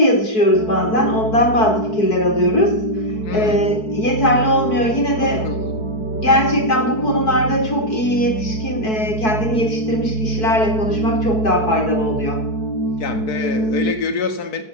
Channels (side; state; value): right; late; 4.6 ms